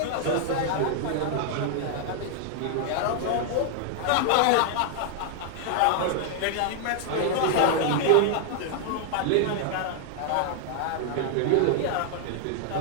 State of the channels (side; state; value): both; different; correlation -0.01